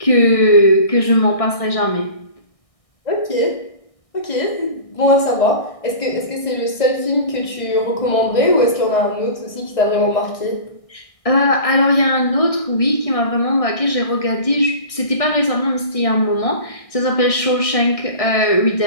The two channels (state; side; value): late; right; 1.6 ms